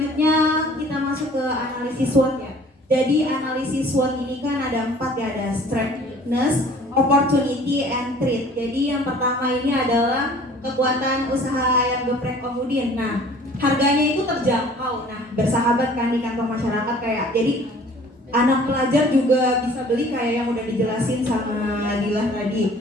kita masuk ke analisis SWOT ya. Jadi analisis SWOT ini kan ada 4 ya, ada strength, weakness, opportunity, and threat. Jadi yang pertama ini adalah kekuatan usaha ayam geprek Om Udin. Nah, harganya itu terjangkau. Nah, bersahabat kan di kantong masyarakat kayak. Jadi anak pelajar juga bisa beli kayak yang udah dijelasin sama Dilah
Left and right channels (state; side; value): normal; both; correlation 0.51